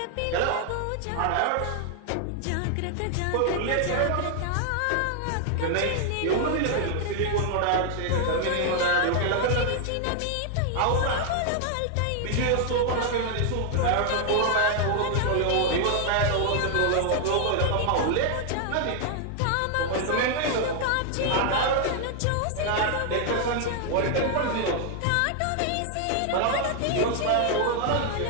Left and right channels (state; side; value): different; both; correlation 0.00